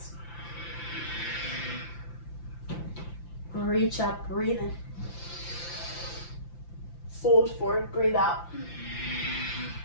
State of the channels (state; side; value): late; right; 5.9 ms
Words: Reach up, breathe in. Fold forward, breathe out.